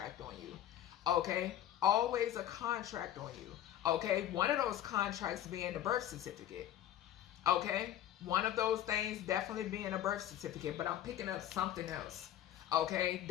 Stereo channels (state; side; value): quieter; right; 12.0 dB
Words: on you. Okay? Always a contract on you. Okay? One of those contracts being the birth certificate. Okay? One of those things definitely being a birth certificate, but I'm picking up something else. Okay,